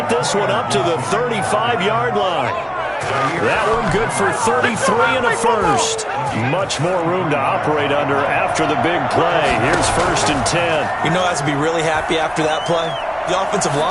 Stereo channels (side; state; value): both; identical; correlation 1.00